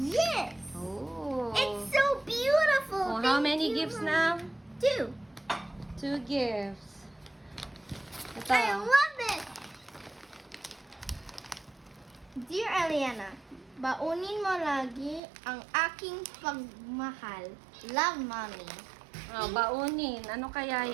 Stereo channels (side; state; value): left; drops out; at 15.2 s